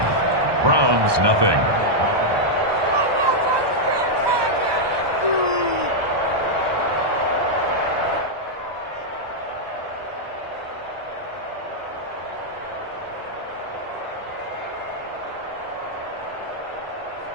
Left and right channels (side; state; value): left; late; 1.2 ms